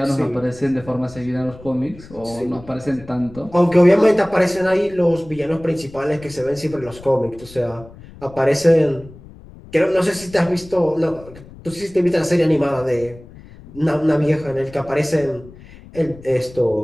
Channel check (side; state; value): left; noise; rumble, 20 dB below the sound